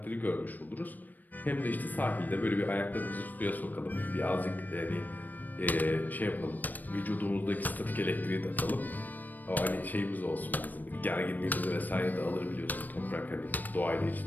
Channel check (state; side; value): late; right; 0.087 ms